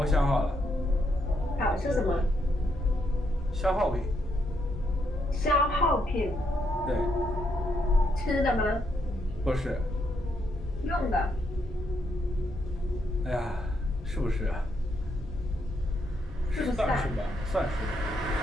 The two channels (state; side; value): normal; both; correlation 0.77